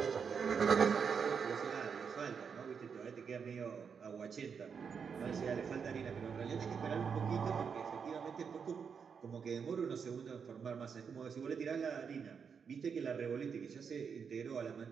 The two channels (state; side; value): quieter; left; 6.4 dB